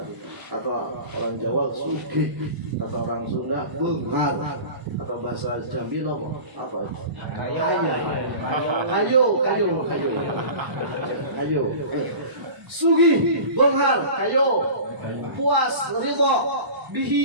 atau orang Jawa sugih, kata orang Sunda benghar, kata bahasa Jambi apa? Kayo. Sugih, benghar, kayo, puas, ridho,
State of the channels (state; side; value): late; left; 1.0 ms